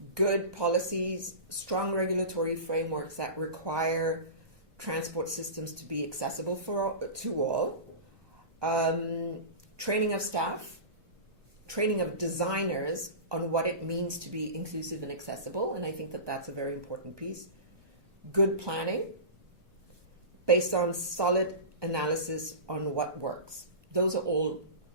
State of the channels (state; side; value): late; left; 1.2 ms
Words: good policies, strong regulatory frameworks that require transport systems to be accessible to all, training of staff, training of designers on what it means to be inclusive and accessible, and I think that that's a very important piece. Good planning, based on solid analysis on what works. Those are all